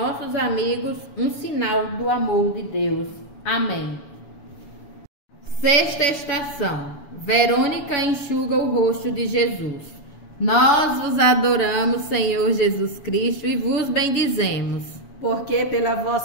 amigos um sinal do amor de Deus. Amém. Sexta estação. Verônica enxuga o rosto de Jesus. Nós vos adoramos, Senhor Jesus Cristo, e vos bendizemos, porque pela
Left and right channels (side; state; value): right; late; 7.1 ms